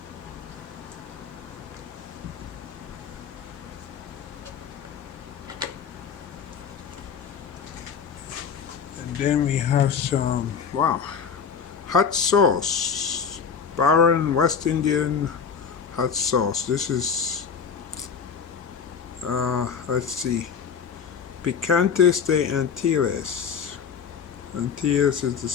And then we have some, wow, hot sauce. Baron West Indian hot sauce. This is, let's see, Picantes de Antilles. Antilles is the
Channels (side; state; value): right; quieter; 6.6 dB